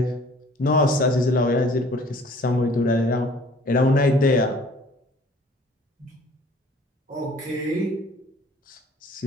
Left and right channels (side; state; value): both; normal; correlation 0.53